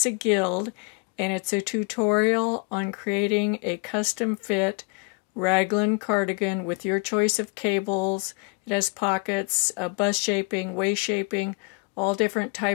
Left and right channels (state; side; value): quieter; right; 30.4 dB